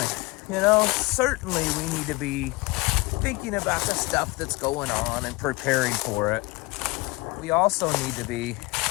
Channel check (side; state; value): right; quieter; 23.3 dB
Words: You know, certainly we need to be thinking about the stuff that's going on and preparing for it. We also need to be